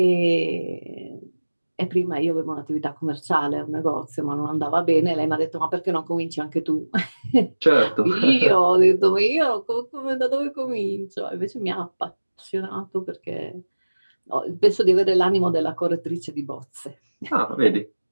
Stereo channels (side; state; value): both; inverted; correlation -1.00